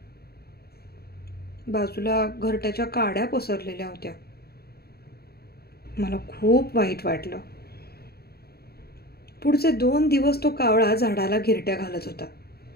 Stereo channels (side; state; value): right; late; 0.46 ms